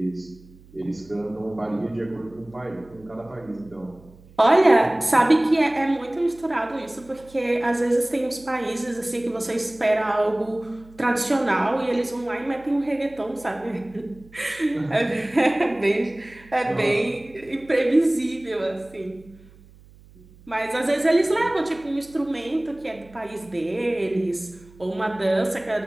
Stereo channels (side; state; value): right; noise; hum, 24 dB below the sound